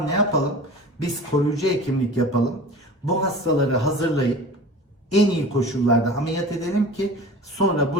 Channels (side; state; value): both; normal; correlation 0.38